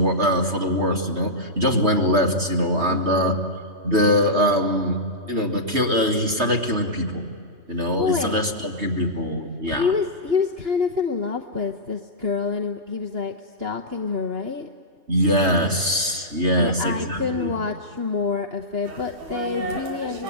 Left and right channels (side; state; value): left; late; 3.2 ms